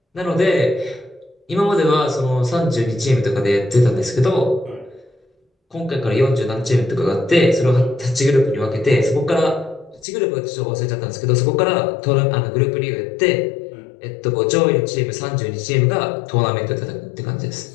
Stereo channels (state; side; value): drops out; right; at 10.1 s